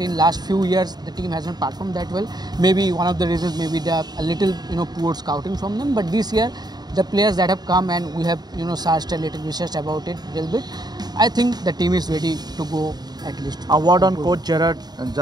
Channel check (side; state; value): left; late; 0.20 ms